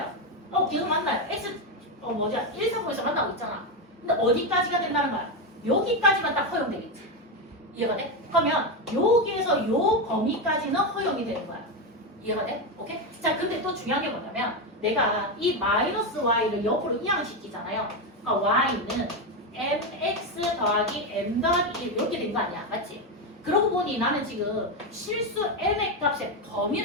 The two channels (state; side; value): normal; both; correlation 0.10